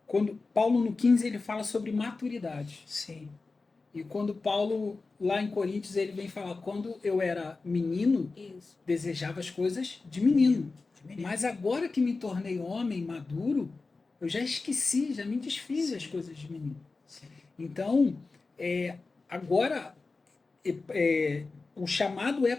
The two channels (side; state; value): right; quieter; 3.8 dB